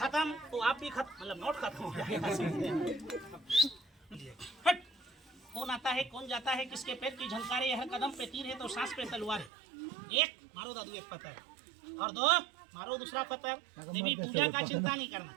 तो आप भी खत्म मतलब नोट खत्म हो जाएगा हट कौन आता है कौन जाता है किसके पैर की झंकारे हर कदम पे तीर है तो सांस पे तलवार है एक मारो दादू एक पत्थर और दो मारो दूसरा पत्थर देवी पूजा का चिंता नहीं करना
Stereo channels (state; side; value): drops out; left; at 9.5 s